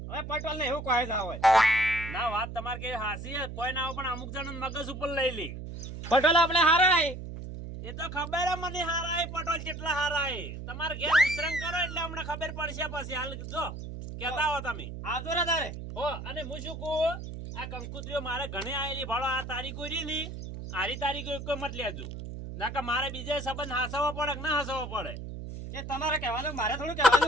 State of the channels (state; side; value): noise; right; hum, 9 dB below the sound